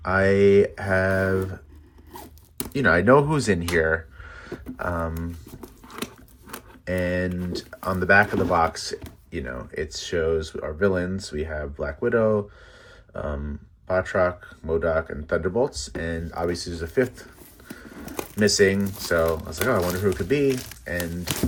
I have, I know who's in here. And on the back of the box, it shows our villains. We have Black Widow, Batroc, MODOK, and Thunderbolts. And obviously there's a fifth missing. So I was like, oh, I wonder who it could be. And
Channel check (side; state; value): both; identical; correlation 1.00